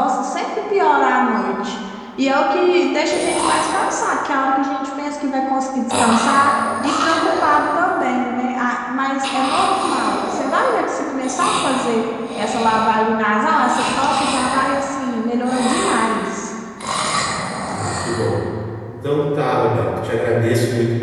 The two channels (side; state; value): both; identical; correlation 1.00